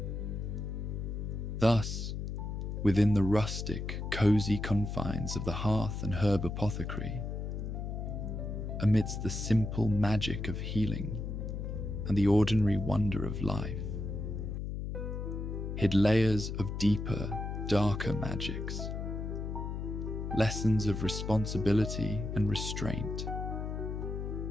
Thus, within the rustic, cozy confines of the Hearth and Herb Apothecary, amidst the simple magic of healing and the ordinary wonder of life, hid layers of deeper, darker magics, lessons of responsibility and restraint,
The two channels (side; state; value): left; noise; hum, 4 dB below the sound